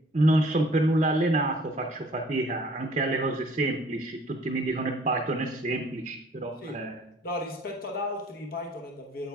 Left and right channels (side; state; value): both; normal; correlation 0.56